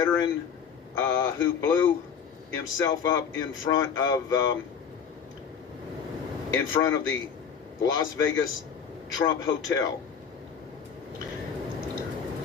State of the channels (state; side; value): quieter; right; 7.0 dB